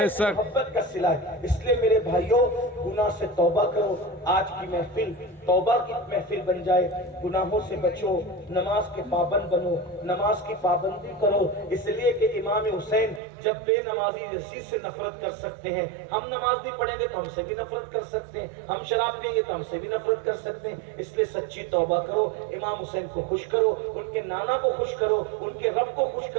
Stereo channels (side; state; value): left; drops out; at 13.2 s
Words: سے محبت کا صلہ ہے. اس لیے میرے بھائیوں گناہ سے توبہ کرو. آج کی محفل توبہ کی محفل بن جائے. گناہوں سے بچو, نماز کے پابند بنو, نماز کی پابندی کرو. اس لیے کہ امام حسین جب بے نمازی یزید سے نفرت کر سکتے ہیں, ہم نماز نہیں پڑھیں گے تو ہم سے بھی نفرت کر سکتے ہیں, ہم شراب پئیں گے تو ہم سے بھی نفرت کر سکتے ہیں. اس لیے سچی توبہ کرو, امام حسین کو خوش کرو, ان کے نانا کو خوش کرو, ان کے رب کو خوش